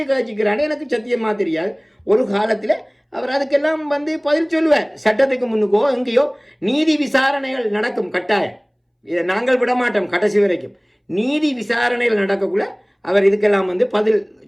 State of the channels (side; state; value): both; identical; correlation 1.00